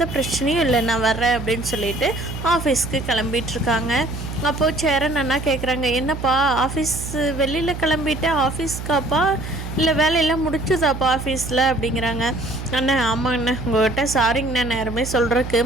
பிரச்சனையும் இல்லை, நான் வர்றேன் அப்படின்னு சொல்லிட்டு ஆஃபீஸ்க்கு கிளம்பிகிட்ருக்காங்க. அப்போது சேரன் அண்ணா கேட்குறாங்க, என்னப்பா ஆஃபீஸ் வெளியில் கிளம்பிட்டு ஆஃபீஸ்க்காப்பா இல்லை வேலையெல்லாம் முடிச்சுதாப்பா ஆஃபீஸில் அப்படிங்கிறாங்க. அண்ணா ஆமாங்கண்ணா, உங்கள்கிட்ட சாரிங்கண்ணா, நேரமே சொல்கிறதுக்கு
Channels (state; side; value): noise; right; hum, 8 dB below the sound